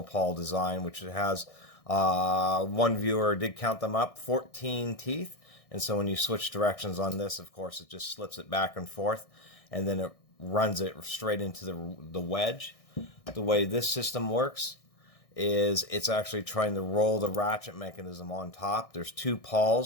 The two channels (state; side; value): late; right; 1.6 ms